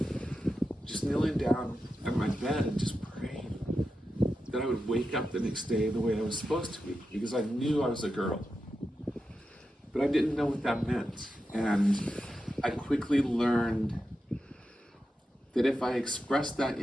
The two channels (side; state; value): both; normal; correlation 0.90